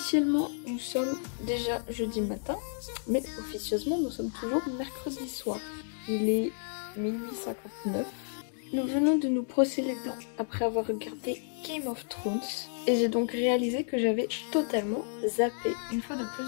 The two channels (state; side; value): silent; right; digital silence